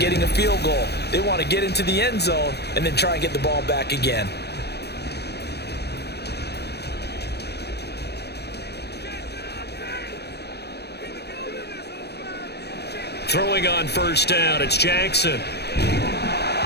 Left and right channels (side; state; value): right; late; 0.48 ms